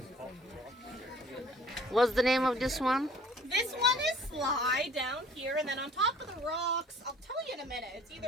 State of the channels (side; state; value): both; normal; correlation 0.53